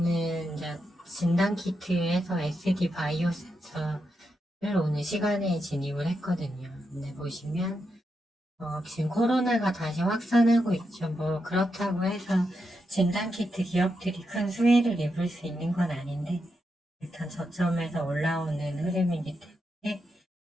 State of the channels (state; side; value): normal; both; correlation 0.85